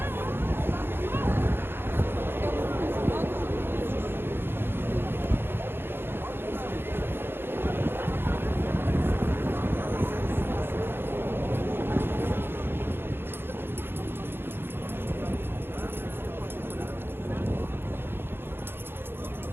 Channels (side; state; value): left; late; 0.10 ms